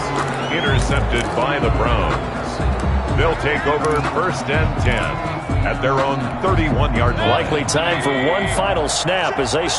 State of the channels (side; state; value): both; identical; correlation 1.00